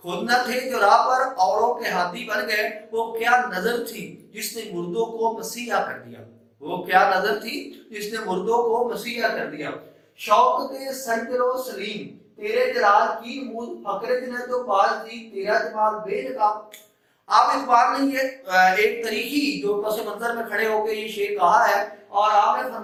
خود نہ تھے جو راہ پر اوروں کے ہاتھی بن گئے، وہ کیا نظر تھی جس نے مردوں کو مسیحا کر دیا، وہ کیا نظر تھی جس نے مردوں کو مسیحا کر دیا۔ شوق دے سنجر و سلیم تیرے جلال کی نمود فقر جنت و باز دی تیرا جمال بے نقاب۔ آپ اقبال نے یہ ایک تاریخی جو پس منظر میں کھڑے ہو کے یہ شعر کہا ہے، اور آپ نے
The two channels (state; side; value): identical; both; correlation 1.00